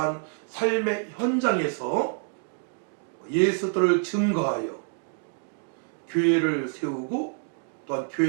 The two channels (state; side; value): silent; left; 57 dB below the other